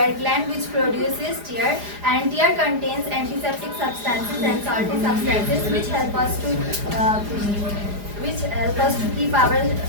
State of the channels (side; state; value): left; late; 4.9 ms